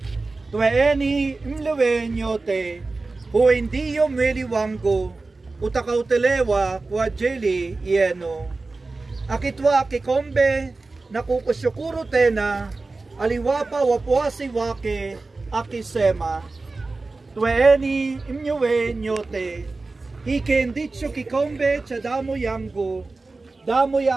"Twaeni mle nyote, huu ndiyo mwili wangu utakaotolewa kwa ajili yenu." Akitwaa kikombe na kukushukuru tena, aliwapa wafuasi wake, akisema, "Twaeni mnywe nyote, hiki ndicho kikombe cha damu yangu, damu ya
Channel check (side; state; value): left; quieter; 3.6 dB